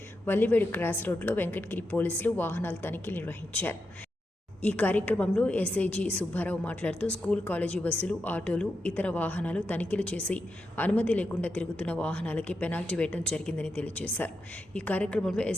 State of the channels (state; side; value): normal; both; correlation 0.86